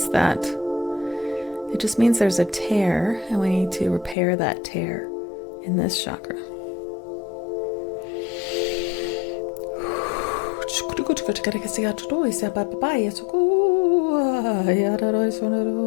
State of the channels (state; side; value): drops out; right; at 4.2 s